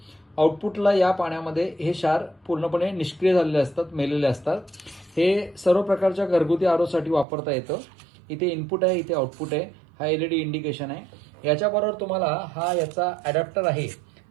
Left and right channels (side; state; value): left; drops out; at 7.2 s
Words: आउटपुटला या पाण्यामध्ये हे क्षार पूर्णपणे निष्क्रिय झालेले असतात, मेलेले असतात। हे सर्व प्रकारच्या घरगुती आरोसाठी वापरता येतं। इथे इनपुट आहे, इथे आउटपुट आहे, हा एलईडी इंडिकेशन आहे। याच्याबरोबर तुम्हाला हा याचा अडॅप्टर आहे